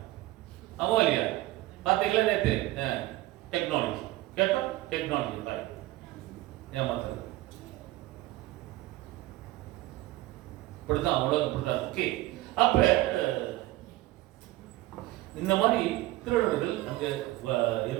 ஆமா இல்லையா? பார்த்தீங்களா நேற்று? டெக்னாலஜி கேட்டோம், டெக்னாலஜி தான் ஏமாத்துறது. இப்படிதான் உலகம் இப்படிதான். ஓகே, அப்ப இந்த மாதிரி திருடர்கள் அங்க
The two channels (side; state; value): left; quieter; 17.8 dB